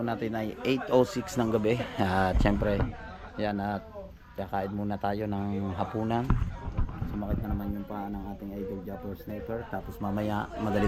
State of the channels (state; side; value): identical; both; correlation 1.00